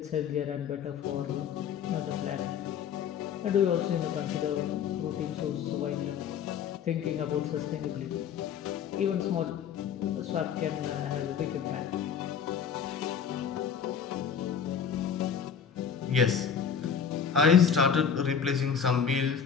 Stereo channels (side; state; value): right; quieter; 7.5 dB